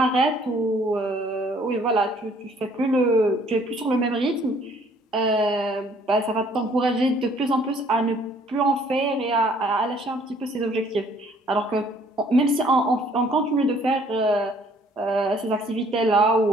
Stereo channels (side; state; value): both; normal; correlation 0.60